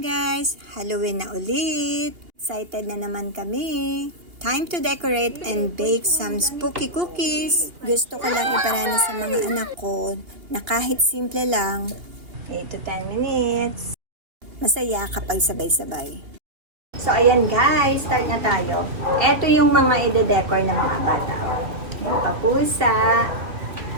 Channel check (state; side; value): late; left; 2.8 ms